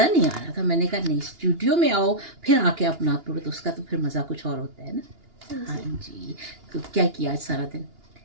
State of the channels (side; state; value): left; late; 2.9 ms